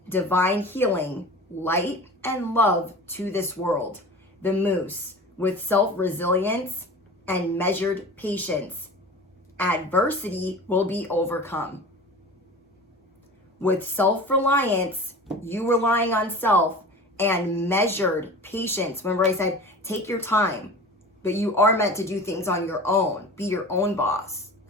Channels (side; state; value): both; normal; correlation 0.36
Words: divine healing, light, and love to this world. The moose, with self-resilience and measured patience, adversity will be overcome. With self-reliance, you relying on self, and measured patience. Remember I said, take your time, but you are meant to do things on your own. Be your own boss.